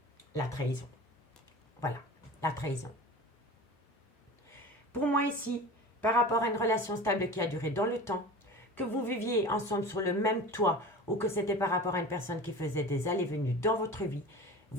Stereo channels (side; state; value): both; normal; correlation 0.35